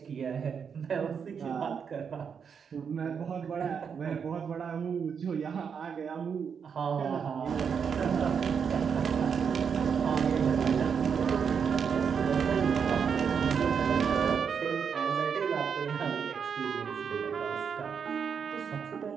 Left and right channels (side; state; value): left; quieter; 6.7 dB